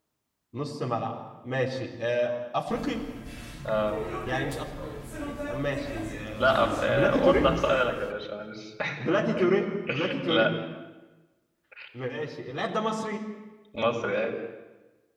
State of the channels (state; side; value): identical; both; correlation 1.00